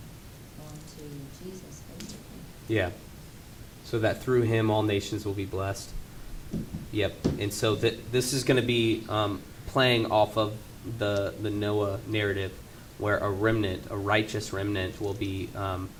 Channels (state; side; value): identical; both; correlation 1.00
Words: on to Jesus, basically. Yeah. So that through him all nations will be blessed. Yep. And so this is going to be playing off of the Noah narrative, where a remnant, a righteous remnant, will be